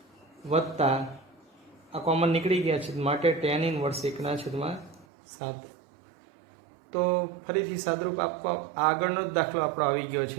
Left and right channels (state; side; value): drops out; left; at 5.1 s